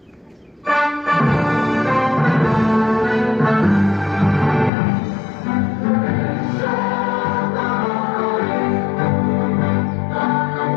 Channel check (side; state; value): right; drops out; at 4.7 s